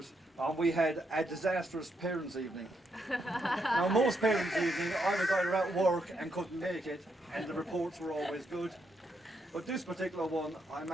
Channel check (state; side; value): normal; both; correlation 0.79